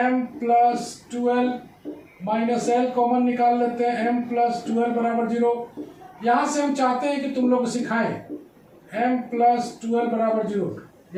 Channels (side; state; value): both; identical; correlation 1.00